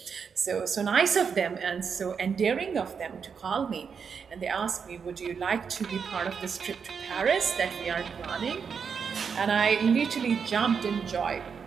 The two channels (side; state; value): left; quieter; 6.3 dB